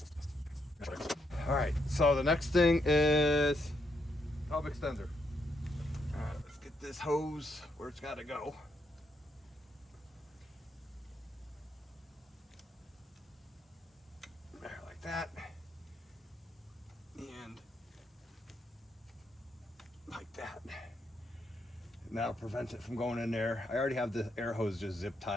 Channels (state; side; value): normal; both; correlation 0.77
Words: All right, so the next thing is hub extender. All right, let's get this hose where it's got to go. There, like that. And like that. And that'll prevent it from going in there. I already have the air hose just zip